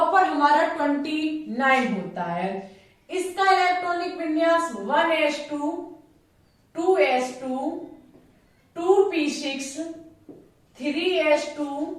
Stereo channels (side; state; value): both; identical; correlation 1.00